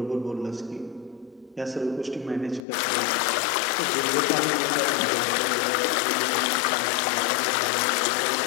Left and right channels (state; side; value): drops out; right; at 2.6 s